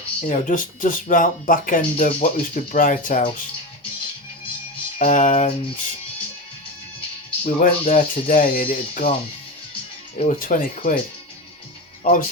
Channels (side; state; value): both; normal; correlation 0.21